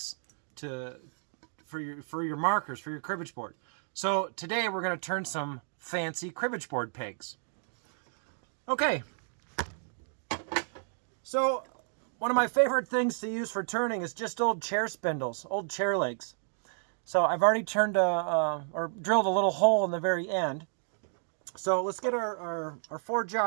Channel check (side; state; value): left; silent; digital silence